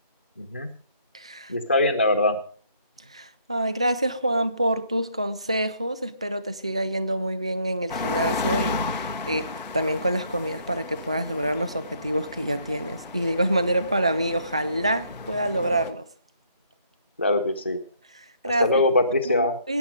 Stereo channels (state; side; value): inverted; both; correlation -0.65